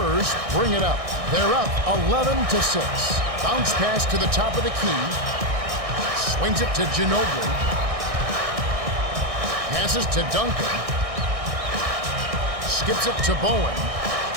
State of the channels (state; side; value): late; left; 1.6 ms